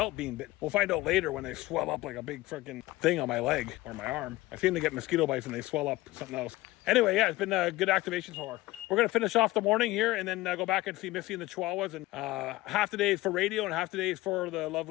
being bitten. We'll find out later when they swell up like a big freaking thing on my leg or my arm. I seem to get mosquito bites and they swell up something else. Anyway, yeah, it's been a good activation so far. We're going to finish off the morning here and then go back and see Missy and the Chihuahuas. And half the day is for radio and half the day is for the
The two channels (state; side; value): quieter; right; 18.8 dB